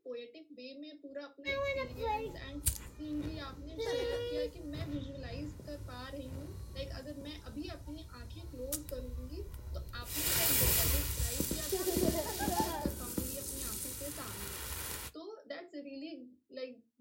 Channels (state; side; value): identical; both; correlation 1.00